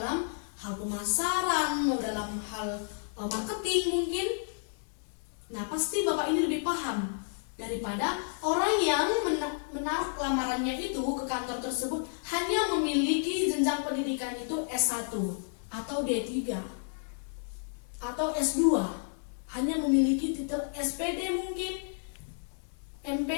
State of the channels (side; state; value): right; silent; digital silence